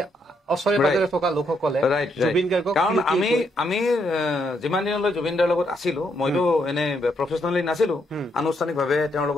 ওচৰে পাজৰে থকা লোকসকলে জুবিন গাৰ্গক, কাৰণ আমি যিমান দিনলৈ জুবিন দাৰ লগত আছিলো, মইতো এনে প্ৰফেচনেলি নাছিলো, আনুষ্ঠানিকভাৱে তেওঁৰ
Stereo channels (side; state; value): both; normal; correlation 0.76